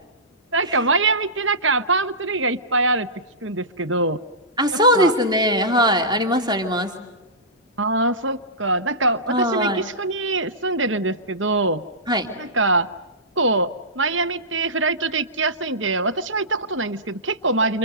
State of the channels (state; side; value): normal; both; correlation -0.18